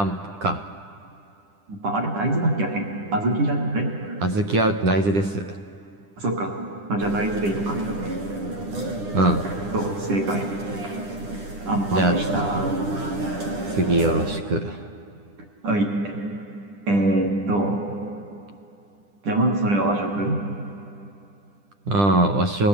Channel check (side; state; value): left; late; 10 ms